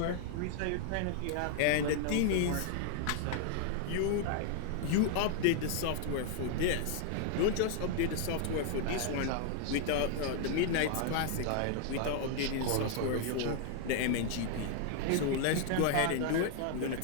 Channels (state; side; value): different; both; correlation 0.00